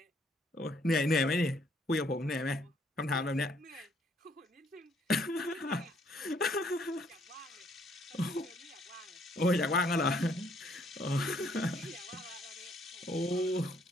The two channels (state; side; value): normal; both; correlation 0.67